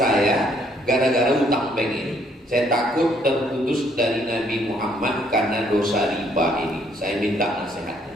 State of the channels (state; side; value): normal; both; correlation 0.67